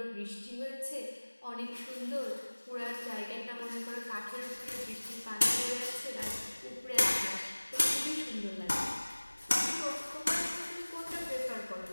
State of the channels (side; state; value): both; inverted; correlation -1.00